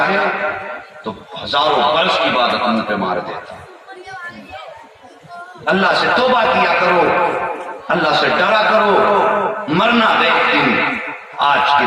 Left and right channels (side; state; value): both; identical; correlation 1.00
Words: تو ہزاروں برس کی عبادت منہ پہ مار دیتا. اللہ سے توبہ کیا کرو، اللہ سے ڈرا کرو، مرنا ایک دن. آج کی